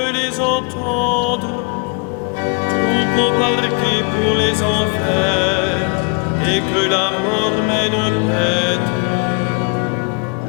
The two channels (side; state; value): right; quieter; 35.0 dB